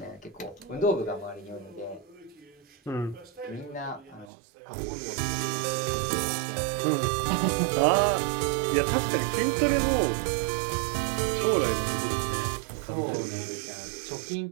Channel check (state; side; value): drops out; left; at 4.3 s